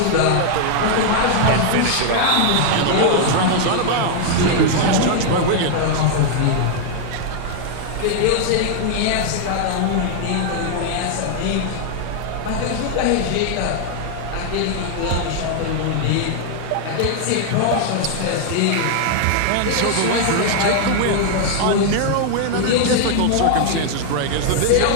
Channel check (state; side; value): different; both; correlation 0.00